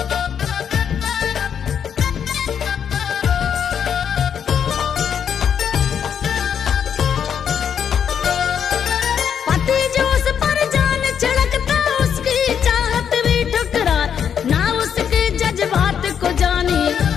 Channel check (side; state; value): right; quieter; 8.1 dB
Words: पति जो उस पर जान छिड़कता, उसकी चाहत भी ठुकराए, ना उसके जज्बात को जानी,